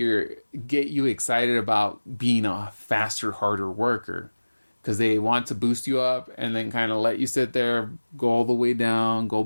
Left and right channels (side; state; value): both; inverted; correlation -1.00